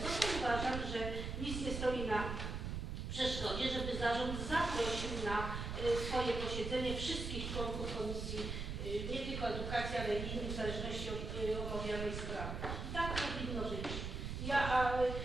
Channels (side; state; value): right; noise; rumble, 4 dB below the sound